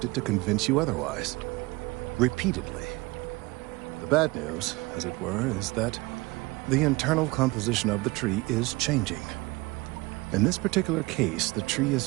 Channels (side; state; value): left; quieter; 23.1 dB